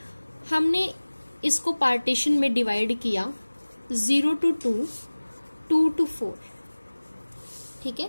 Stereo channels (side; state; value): both; inverted; correlation -1.00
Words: हमने इसको पार्टीशन में डिवाइड किया 0 to 2, 2 to 4, ठीक है।